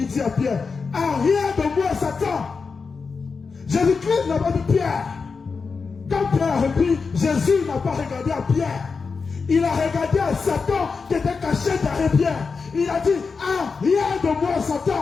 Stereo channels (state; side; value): quieter; right; 4.9 dB